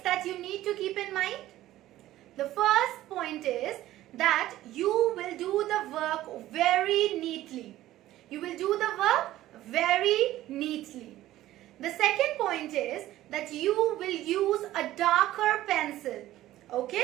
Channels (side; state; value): left; quieter; 14.7 dB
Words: that you need to keep in mind? The first point is that you will do the work very neatly. You will do the work very neatly. The second point is that you will use a darker pencil.